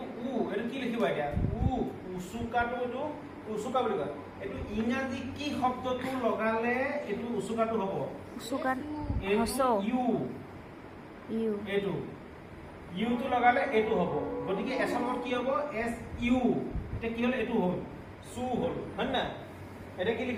এইটো কি লিখিবা এতিয়া উচুকাটো এইটো উচুকা বুলি কয় এইটো ইংৰাজী কি শব্দটো লগালে এইটো উচুকাটো হ'ব এইটো ইউটো লগালে এইটো হ'ব গতিকে এছমত কি হ'ব এছ ইউ এতিয়া কি হ'ল এইটো হ'ল চু হ'ল হয় না এতিয়া কি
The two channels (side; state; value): both; identical; correlation 1.00